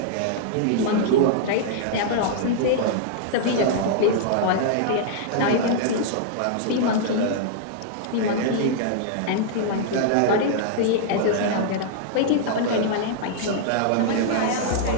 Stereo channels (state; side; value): different; both; correlation -0.01